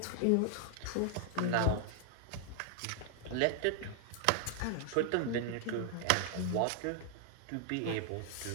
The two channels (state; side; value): different; both; correlation 0.00